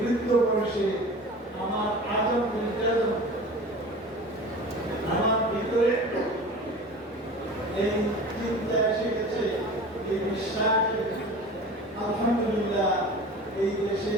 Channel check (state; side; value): normal; both; correlation 0.37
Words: বয়সে আমার আজম নির্যাতন আমার ভিতরে এই চিন্তা এসে গেছে, এই বিশ্বাস। আলহামদুলিল্লাহ এই দেশে